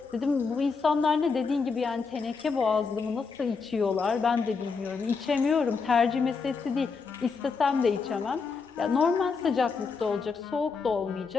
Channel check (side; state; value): right; quieter; 5.0 dB